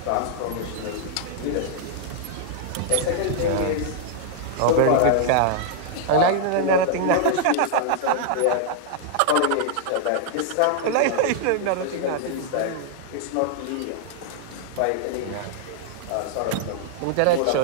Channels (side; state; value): both; different; correlation -0.01